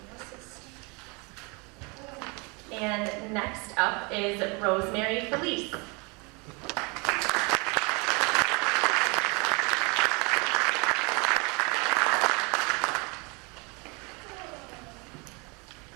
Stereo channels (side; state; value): left; quieter; 29.8 dB